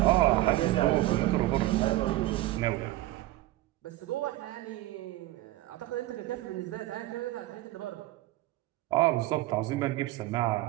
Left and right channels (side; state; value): left; quieter; 16.7 dB